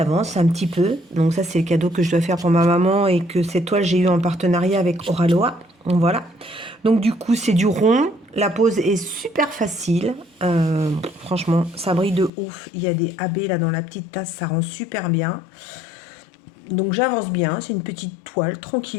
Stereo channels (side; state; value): right; drops out; at 12.3 s